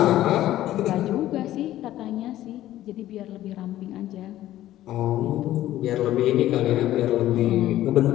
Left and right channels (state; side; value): quieter; right; 13.9 dB